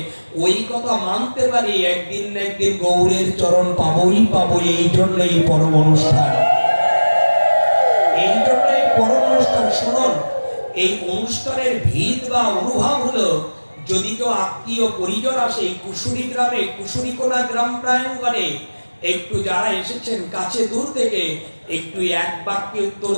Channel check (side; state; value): both; inverted; correlation -1.00